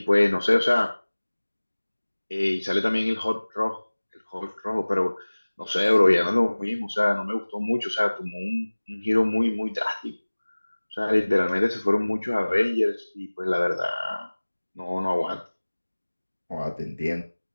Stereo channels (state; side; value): inverted; both; correlation -1.00